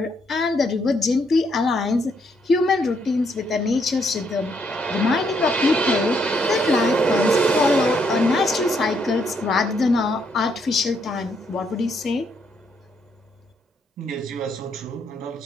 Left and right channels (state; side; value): normal; both; correlation 0.74